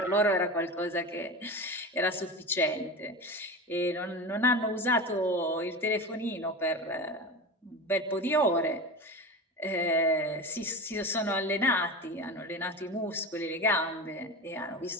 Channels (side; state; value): both; normal; correlation 0.27